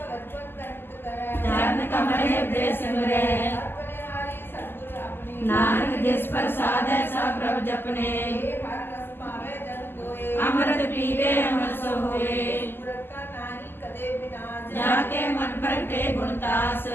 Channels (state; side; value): late; right; 0.10 ms